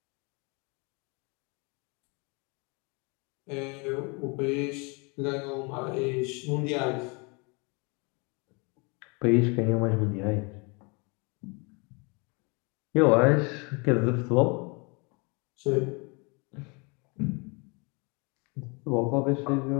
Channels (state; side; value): quieter; right; 31.2 dB